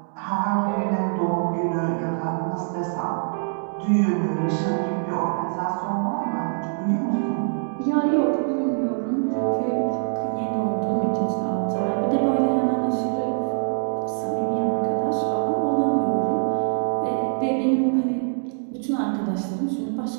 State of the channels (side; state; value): left; silent; digital silence